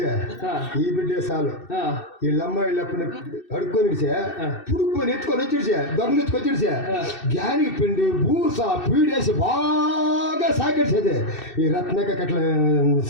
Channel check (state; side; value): late; right; 2.6 ms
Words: ఈ బిడ్డే చాలు. వీళ్ళమ్మ వీళ్ళప్పని అడుక్కొని పుడుక్కొని ఎత్తుకొని వచ్చిడిసా, దొంగలు ఎత్తుకొచ్చిడిసా, గ్యాని పిండి బూస పీడేసి బాగా సాకిడిసేది. ఈ రత్నక అట్లా